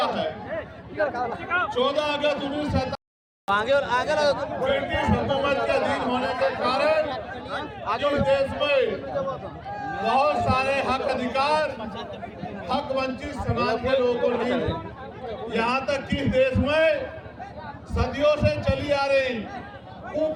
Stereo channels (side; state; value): both; identical; correlation 1.00